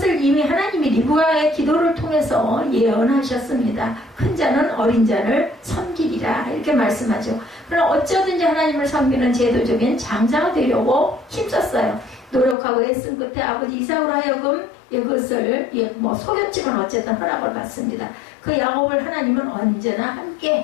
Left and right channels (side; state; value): right; drops out; at 12.6 s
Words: 이미 하나님이 리브가의 기도를 통해서 예언하셨습니다. 큰 자는 어린 자를 섬기리라 이렇게 말씀하죠. 그러나 어쩌든지 하나님을 섬기는 제도적인 장자가 되려고 힘썼어요. 노력하고 애쓴 끝에 아버지 이삭으로 하여금 그것을 속였지만 어쨌든 허락을 받습니다. 그 야곱을 하나님은 언제나